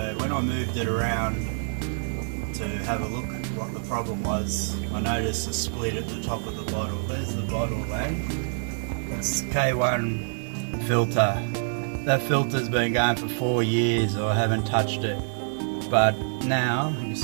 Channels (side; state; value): left; silent; digital silence